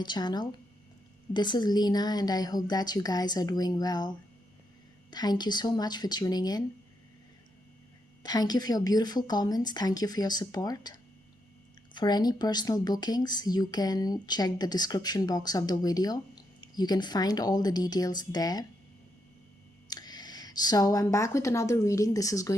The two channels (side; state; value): both; normal; correlation 0.81